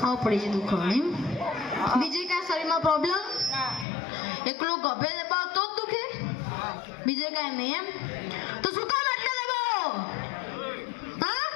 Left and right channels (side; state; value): right; drops out; at 3.9 s